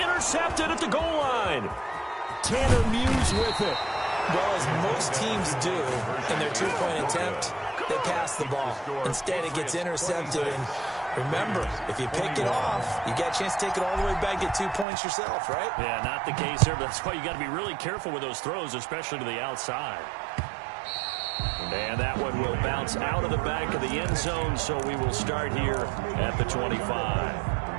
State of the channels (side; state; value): left; drops out; at 14.9 s